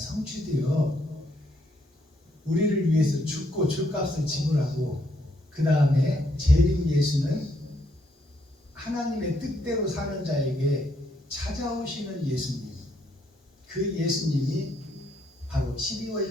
우리를 위해서 죽고 죗값을 지불하고, 그 다음에 재림 예수는 하나님의 뜻대로 사는 자에게 찾아오시는 예수님, 그 예수님이 바로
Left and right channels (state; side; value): normal; both; correlation 0.73